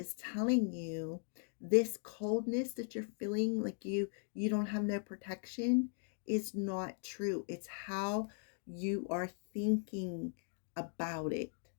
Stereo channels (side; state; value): right; silent; 52 dB below the other